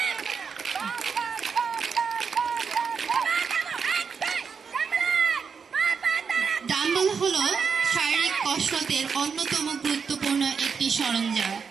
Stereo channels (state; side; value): quieter; left; 6.0 dB